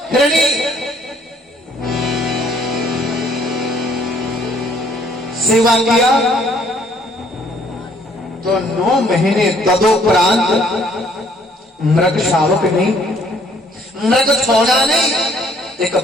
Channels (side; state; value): both; normal; correlation 0.63